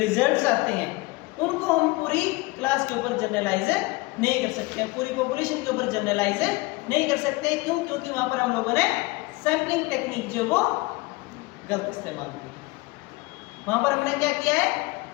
आते हैं उनको हम पूरी क्लास के ऊपर जनरलाइज नहीं कर सकते हैं, पूरी पॉपुलेशन के ऊपर जनरलाइज नहीं कर सकते। क्यों? क्योंकि वहां पर हम लोगों ने सैंपलिंग टेक्निक जो वो गलत इस्तेमाल की। वहां पर हमने क्या किया है?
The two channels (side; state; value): right; quieter; 23.1 dB